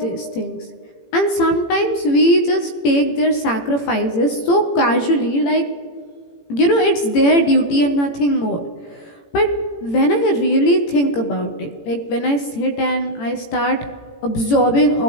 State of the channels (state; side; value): late; right; 18 ms